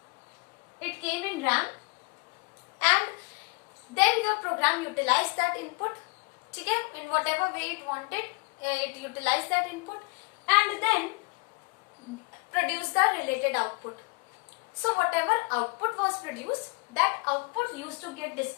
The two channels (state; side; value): quieter; right; 33.2 dB